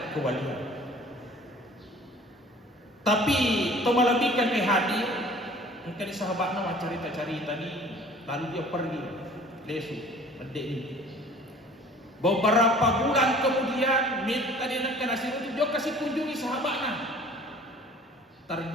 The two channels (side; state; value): both; normal; correlation 0.49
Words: kewalian. Tapi tomalabihkan ke hadir mungkin sahabatnya mau cerita-cerita ni, lalu dia pergi lesu mendek ni. Beberapa bulan kemudian minta dia nak nasi itu dia kasih kunjungi sahabatnya.